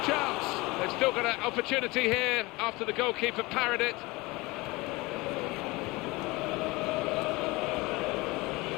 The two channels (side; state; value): right; quieter; 22.8 dB